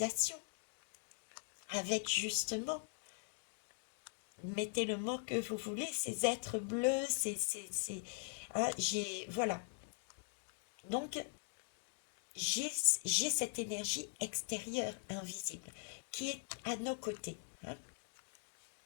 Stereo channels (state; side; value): silent; right; digital silence